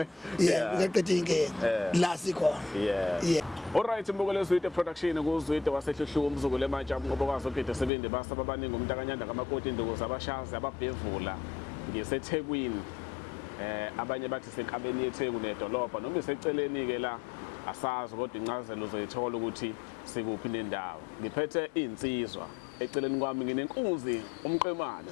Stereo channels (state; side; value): drops out; right; at 7.9 s